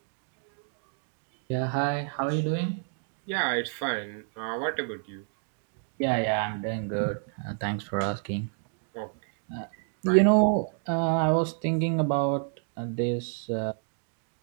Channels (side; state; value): left; silent; 58 dB below the other